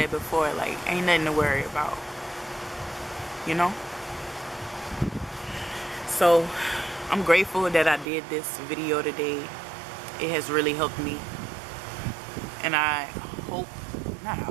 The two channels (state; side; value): drops out; left; at 8.1 s